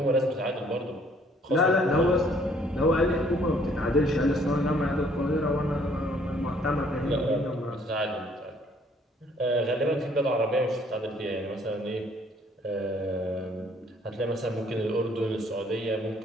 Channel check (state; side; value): normal; both; correlation 0.62